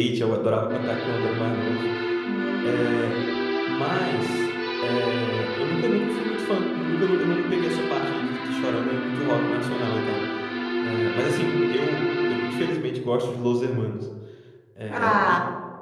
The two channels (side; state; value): both; identical; correlation 1.00